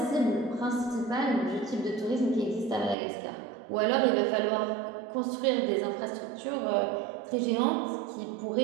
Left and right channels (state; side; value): drops out; left; at 3.0 s